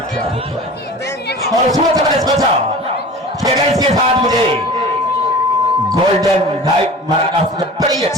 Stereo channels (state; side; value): normal; both; correlation 0.39